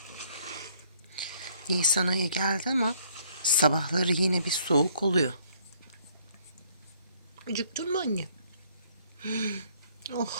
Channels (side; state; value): both; inverted; correlation -0.64